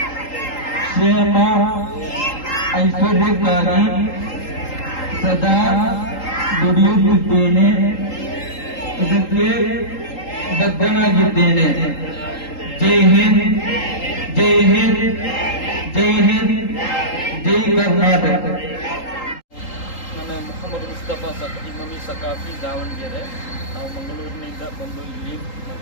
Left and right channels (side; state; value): right; late; 3.8 ms